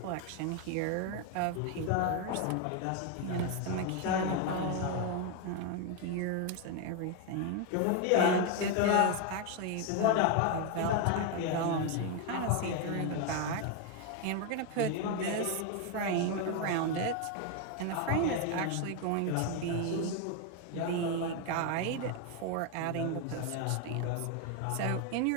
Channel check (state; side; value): different; both; correlation 0.01